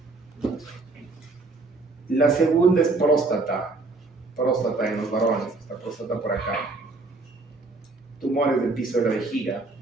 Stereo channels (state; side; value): quieter; left; 3.5 dB